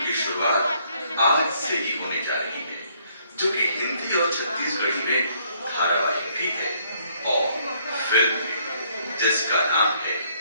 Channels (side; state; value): both; inverted; correlation -0.66